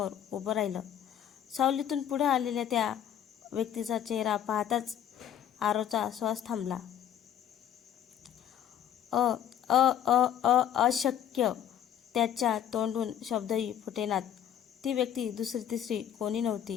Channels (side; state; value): right; quieter; 10.0 dB